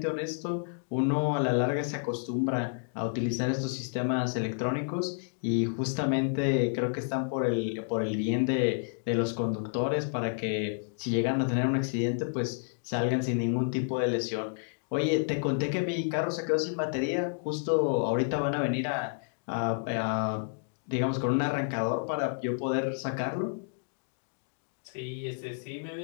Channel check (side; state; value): right; silent; digital silence